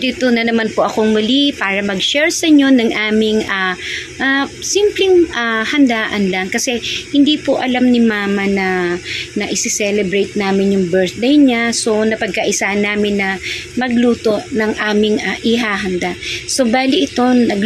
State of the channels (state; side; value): identical; both; correlation 1.00